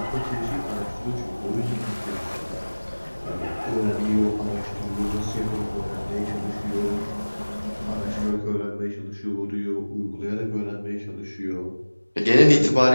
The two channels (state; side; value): inverted; both; correlation -1.00